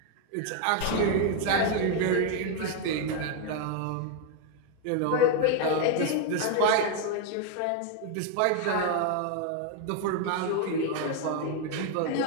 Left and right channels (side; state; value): both; different; correlation 0.01